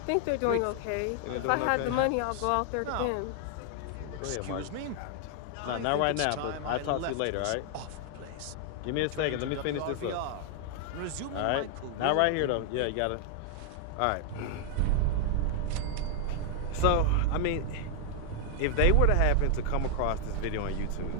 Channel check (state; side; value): different; both; correlation -0.01